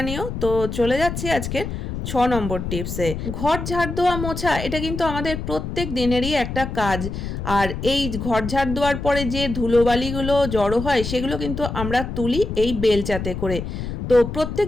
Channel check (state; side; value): noise; left; rumble, 5 dB below the sound